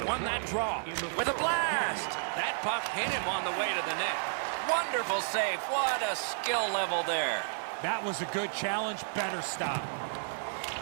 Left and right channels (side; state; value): left; silent; digital silence